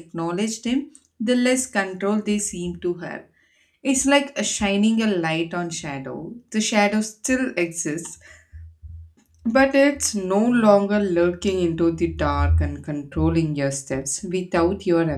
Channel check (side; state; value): both; identical; correlation 1.00